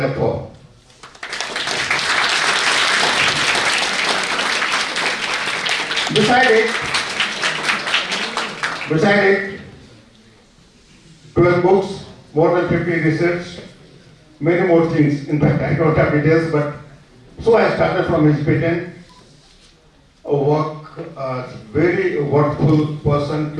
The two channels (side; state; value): both; identical; correlation 1.00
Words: for. Beside it, 12 books, more than 50 research, many more things. In fact, I don't have details, but so I started from his patent, a very worthful person